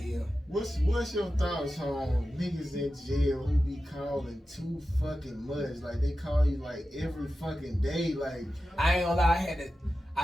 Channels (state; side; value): normal; both; correlation 0.93